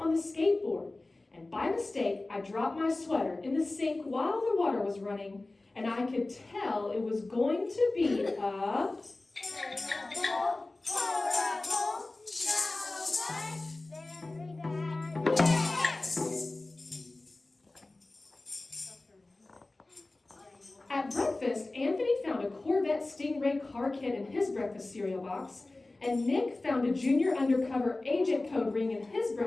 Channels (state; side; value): quieter; right; 3.0 dB